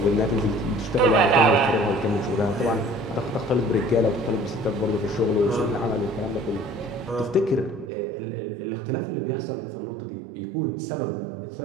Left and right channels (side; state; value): left; drops out; at 7.9 s